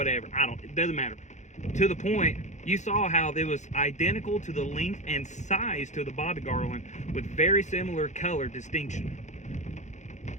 It doesn't matter. To the point, you saw how it was identical to the length and size to the bobby garland with very similar color distinction.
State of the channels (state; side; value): late; right; 0.34 ms